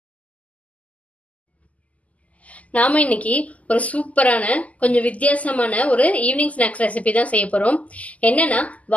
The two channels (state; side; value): late; right; 0.072 ms